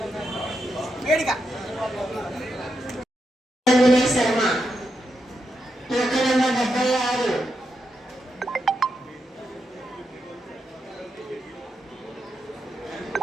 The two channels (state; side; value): normal; both; correlation 0.85